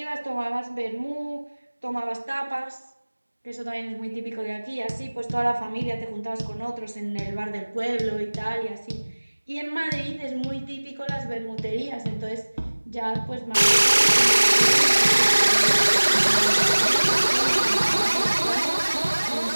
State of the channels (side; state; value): both; inverted; correlation -1.00